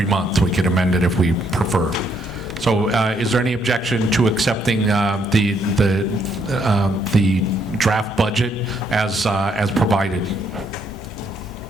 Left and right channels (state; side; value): normal; both; correlation 0.72